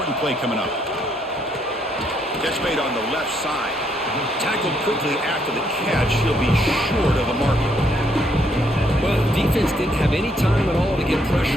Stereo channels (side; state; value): both; normal; correlation 0.72